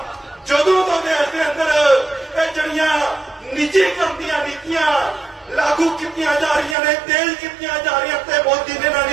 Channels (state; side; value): drops out; left; at 6.8 s